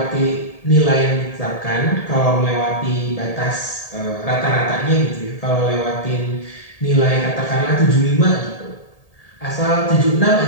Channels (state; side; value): late; right; 1.8 ms